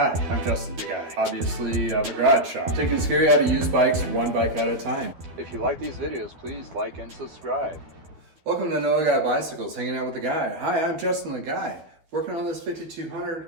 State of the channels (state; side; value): late; left; 12 ms